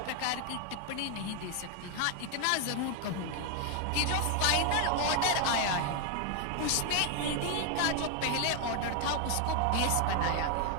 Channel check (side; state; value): both; different; correlation 0.01